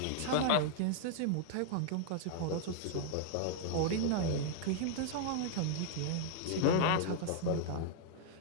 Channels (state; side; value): different; both; correlation -0.01